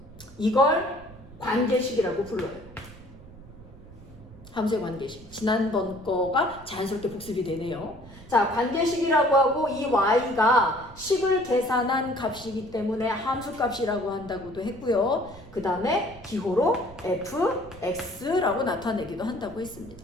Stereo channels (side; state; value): right; noise; rumble, 19 dB below the sound